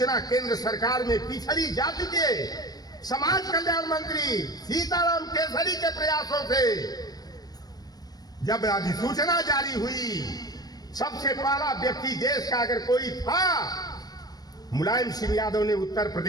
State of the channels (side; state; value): right; late; 0.19 ms